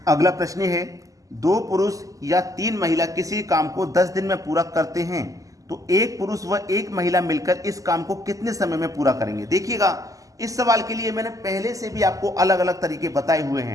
अगला प्रश्न है, 2 पुरुष या 3 महिला किसी काम को 10 दिन में पूरा करते हैं, तो 1 पुरुष व 1 महिला मिलकर इस काम को कितने समय में पूरा करेंगे? देखिएगा, इस सवाल के लिए मैंने पहले से भी आपको अलग अलग तरीके बताए हुए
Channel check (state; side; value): late; left; 0.16 ms